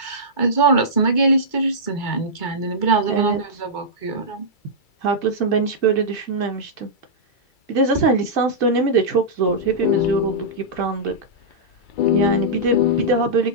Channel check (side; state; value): right; late; 2.3 ms